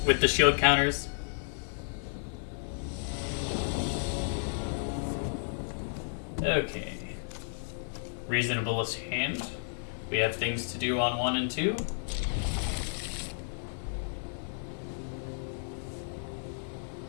with the shield counters. Okay. Reasonablest hand. We have things to do on 1 and 2.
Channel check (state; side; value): silent; right; 56 dB below the other